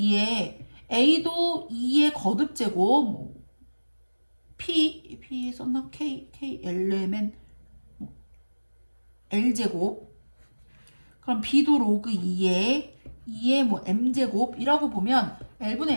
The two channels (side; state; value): both; inverted; correlation -1.00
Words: A도 2의 거듭제곱, 뭐 P 썼나? K Lmen 뭐 L제곱. 그럼 B도 로그 2의 뭐 M제곱이라고 보면